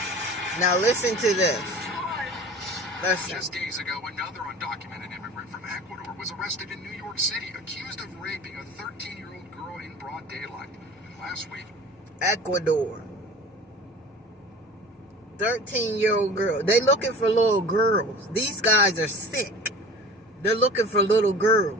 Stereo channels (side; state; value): both; normal; correlation 0.40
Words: Now listen to this. Listen. just days ago, another undocumented immigrant from Ecuador was arrested in New York City, accused of raping a 13-year-old girl in broad daylight. And last week, Ecuador. 13-year-old girl. They looking for little girls. These guys are sick. They're looking for little